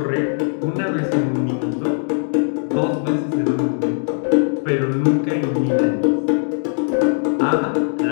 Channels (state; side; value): silent; right; digital silence